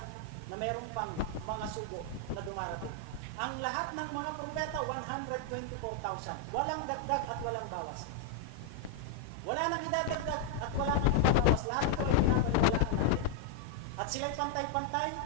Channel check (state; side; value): different; both; correlation 0.00